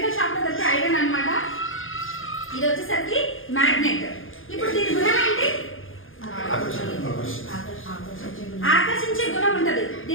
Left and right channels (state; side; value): late; right; 0.59 ms